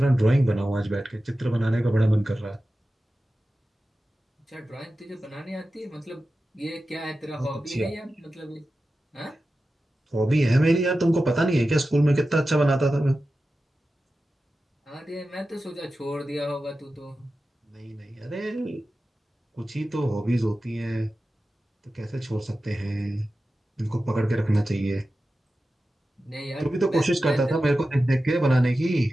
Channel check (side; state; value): both; normal; correlation 0.93